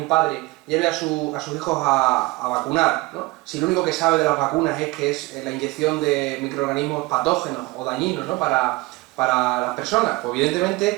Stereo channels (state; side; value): quieter; left; 22.4 dB